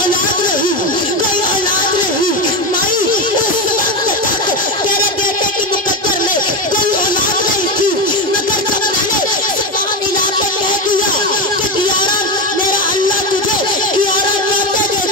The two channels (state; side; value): normal; both; correlation 0.16